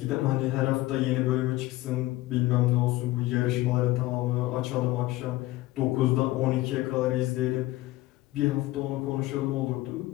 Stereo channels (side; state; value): right; quieter; 17.9 dB